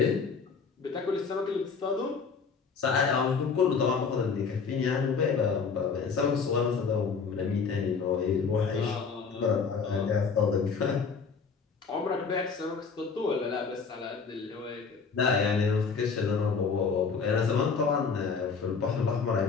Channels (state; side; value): quieter; right; 5.4 dB